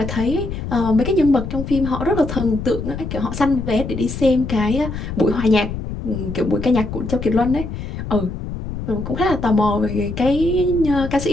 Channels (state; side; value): noise; left; rumble, 7 dB below the sound